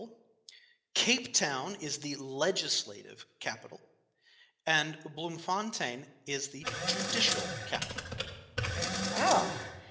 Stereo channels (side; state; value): both; identical; correlation 1.00